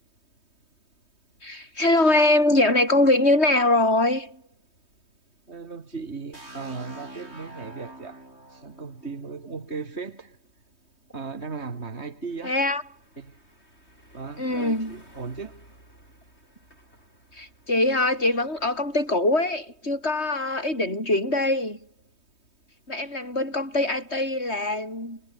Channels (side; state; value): right; late; 3.2 ms